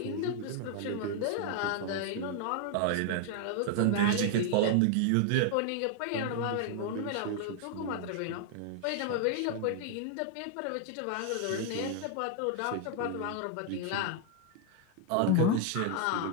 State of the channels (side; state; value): both; different; correlation 0.00